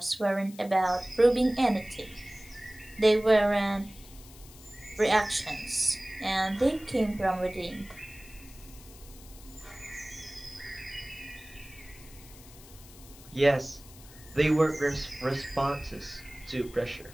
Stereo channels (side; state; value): left; noise; hiss, 20 dB below the sound